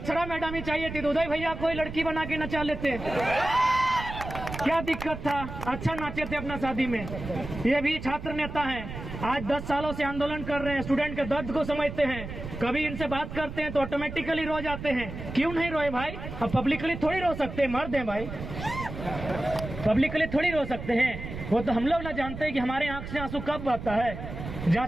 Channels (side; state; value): right; noise; rumble, 9 dB below the sound